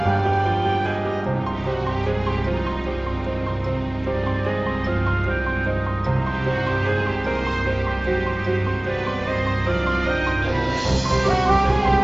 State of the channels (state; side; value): noise; right; hum, 25 dB below the sound